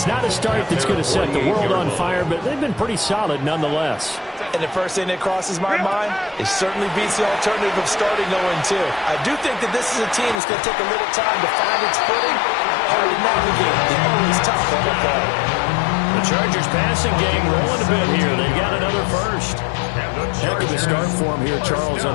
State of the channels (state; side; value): drops out; right; at 10.4 s